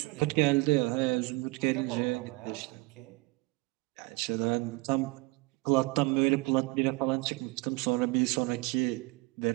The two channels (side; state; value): left; quieter; 23.5 dB